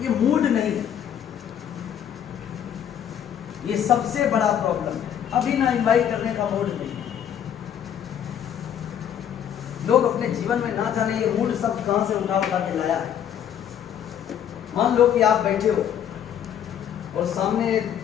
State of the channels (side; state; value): right; quieter; 9.3 dB